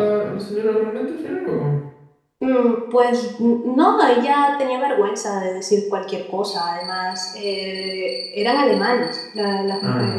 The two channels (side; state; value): both; identical; correlation 1.00